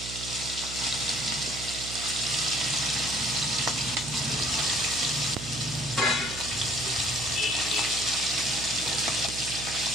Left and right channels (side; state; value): right; noise; hum, 10 dB below the sound